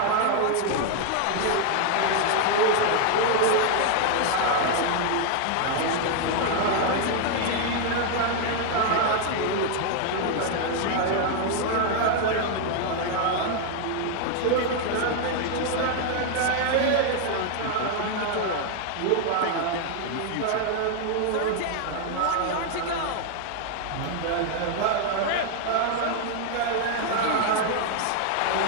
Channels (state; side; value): different; both; correlation 0.00